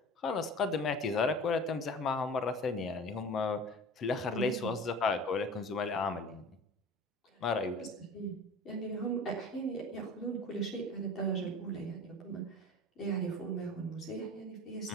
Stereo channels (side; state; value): both; normal; correlation 0.39